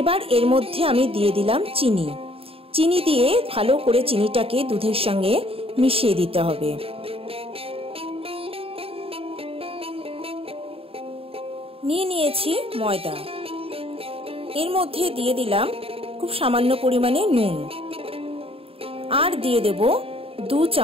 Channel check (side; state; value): left; late; 0.27 ms